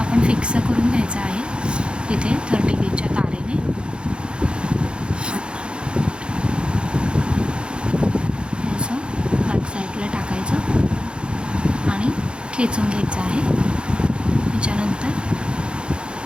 आपण फिक्स करून घ्यायचा आहे तिथे 30 गेजच्या तारेने. असं बॅक साईडला टाकायचं आणि खेचून घ्यायचं आहे. त्याच्यानंतर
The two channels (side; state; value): left; late; 0.054 ms